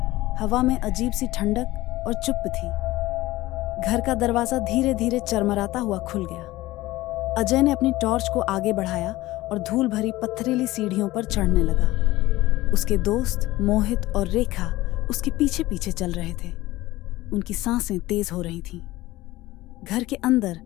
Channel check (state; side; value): quieter; right; 17.9 dB